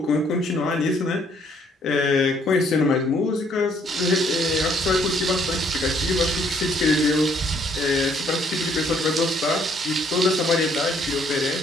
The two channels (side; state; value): both; normal; correlation 0.65